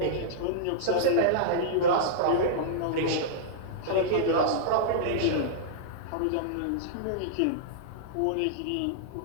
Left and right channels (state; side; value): different; both; correlation -0.02